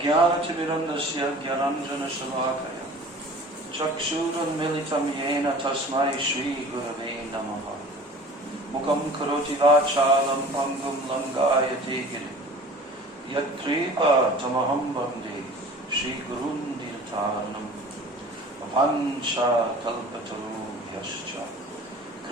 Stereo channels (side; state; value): both; normal; correlation 0.43